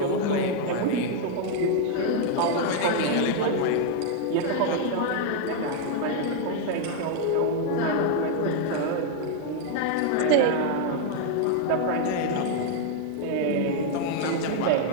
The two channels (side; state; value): both; different; correlation 0.00